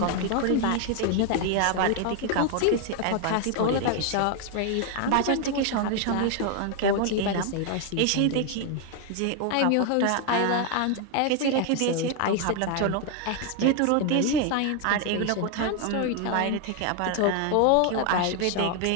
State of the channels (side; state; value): both; different; correlation 0.01